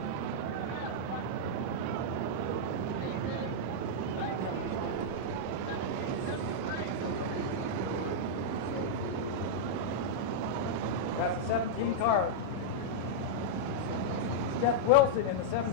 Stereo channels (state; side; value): normal; both; correlation -0.04